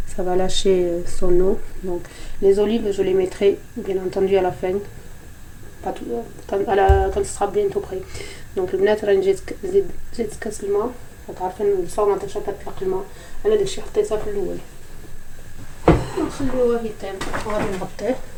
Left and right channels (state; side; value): identical; both; correlation 1.00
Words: ça va lâcher son eau. Donc les olives je les mettrai bien entendu à la fin, pas tout, quand ce sera bientôt prêt. Donc البنات راني زيت كاس الماء. عارفين الصومه تاع كتطلق الماء، انا داكشي حطيتها في الاول. نخليوه يطيب وغادي نغطيه